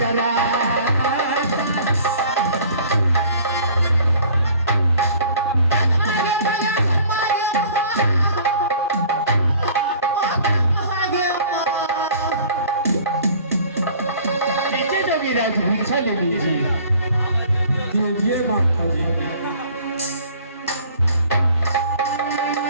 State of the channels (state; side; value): inverted; both; correlation -0.50